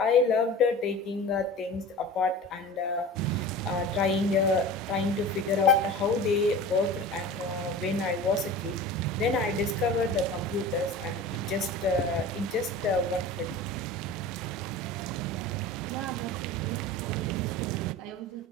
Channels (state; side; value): normal; both; correlation 0.36